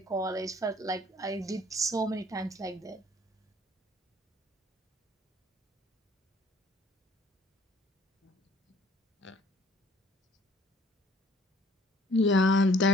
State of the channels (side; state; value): both; normal; correlation 0.58